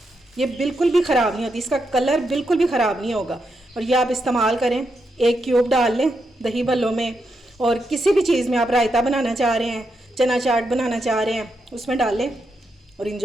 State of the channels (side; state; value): both; normal; correlation 0.83